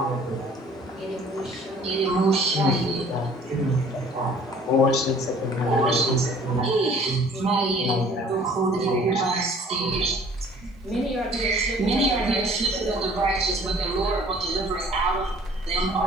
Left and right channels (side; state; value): both; normal; correlation 0.52